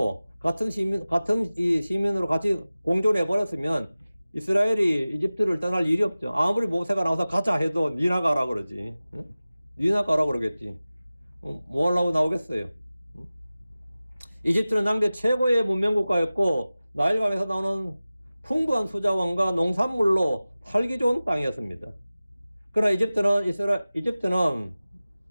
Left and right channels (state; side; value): inverted; both; correlation -0.96